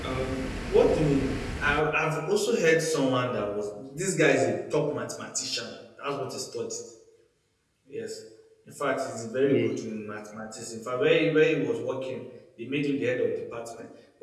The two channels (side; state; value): both; identical; correlation 1.00